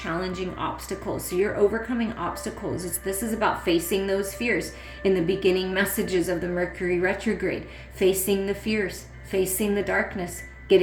obstacles. So you're overcoming obstacles. This is about facing those fears. In the beginning messages of the Mercury Retrograde, facing the fears, facing the darkness,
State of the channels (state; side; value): identical; both; correlation 1.00